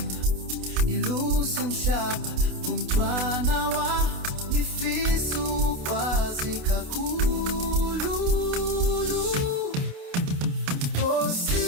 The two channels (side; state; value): left; late; 28 ms